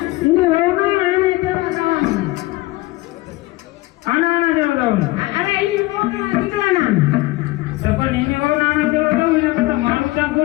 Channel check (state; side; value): quieter; right; 19.6 dB